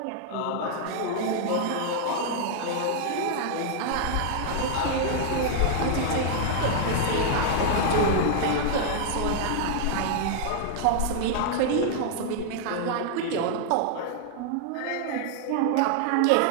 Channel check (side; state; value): both; different; correlation -0.01